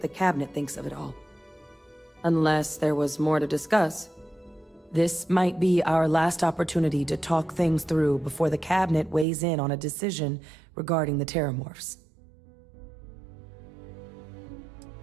the cabinet thinks of it all. Unless there was more to discuss. This might be our last opportunity to talk things through before the cabinet weighs in on a decision regarding the Terramorphs.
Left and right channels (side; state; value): left; drops out; at 9.2 s